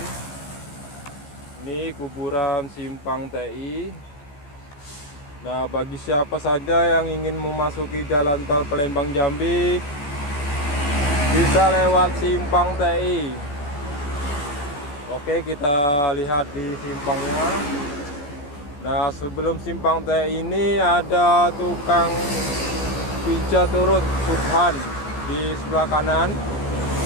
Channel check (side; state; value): right; late; 14 ms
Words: Ini kuburan Simpang TI. Nah, bagi siapa saja yang ingin memasuki jalan tol Palembang Jambi bisa lewat Simpang TI. Oke, kita lihat di simpangnya. Nah, sebelum Simpang TI ini ada tukang pijat urut Subhan di sebelah kanan.